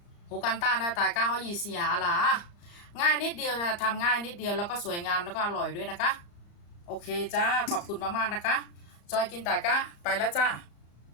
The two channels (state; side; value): late; right; 34 ms